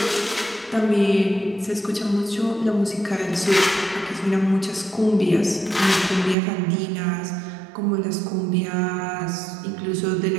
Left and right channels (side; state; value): left; drops out; at 6.4 s